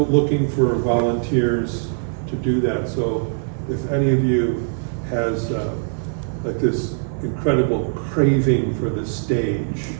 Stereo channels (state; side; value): silent; left; 61 dB below the other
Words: looking for volunteers to do that. So if any of you has like this incredible craving for the stage,